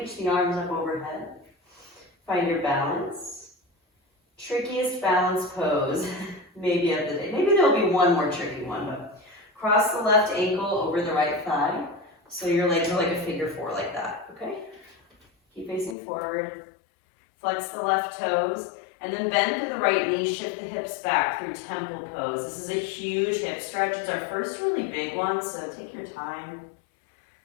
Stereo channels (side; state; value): right; drops out; at 16.0 s